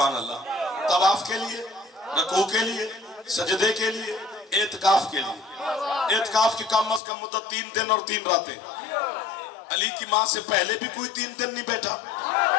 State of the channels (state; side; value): drops out; right; at 7.0 s